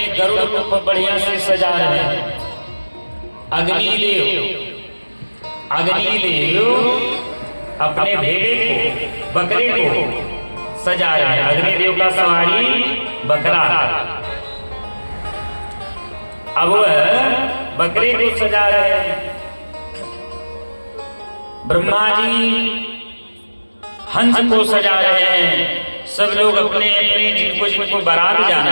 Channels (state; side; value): inverted; both; correlation -1.00